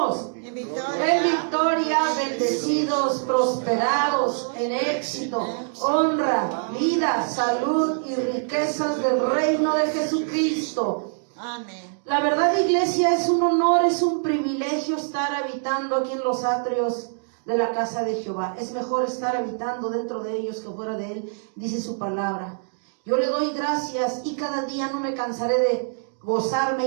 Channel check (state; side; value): silent; left; digital silence